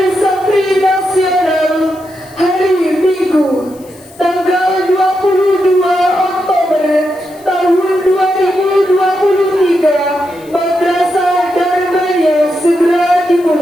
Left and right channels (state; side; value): noise; left; hiss, 26 dB below the sound